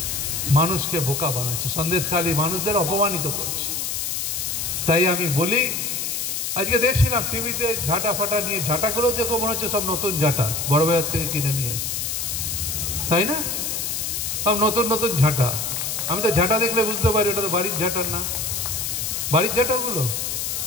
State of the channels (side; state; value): left; noise; hiss, 2 dB below the sound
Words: মানুষকে বোকা বানাচ্ছে, সন্দেশখালী মানুষদের অপমানিত করছে। তাই আমি বলি, আজকে দেখছিলাম টিভিতে ঝাঁটা ফাটা নিয়ে, ঝাঁটাগুলো দেখো মনে হচ্ছে সব নতুন ঝাঁটা, বড় বাজার থেকে কিনে নিয়ে আসে, তাই না? সব নতুন নতুন ঝাঁটা। আমি তো ঝাঁটা দেখলে বুঝতে পারি ওটা তো বাড়ির ঝাঁটার না। বাড়ির